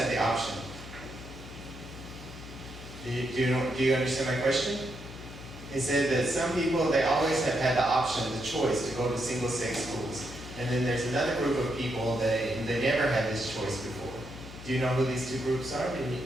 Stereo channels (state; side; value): noise; left; hum, 14 dB below the sound